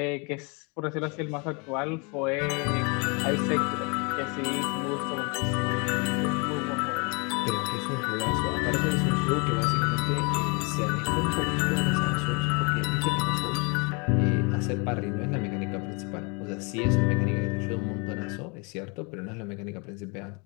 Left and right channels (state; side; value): quieter; right; 32.0 dB